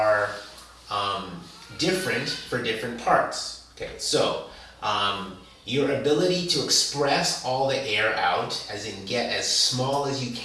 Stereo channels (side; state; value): both; identical; correlation 1.00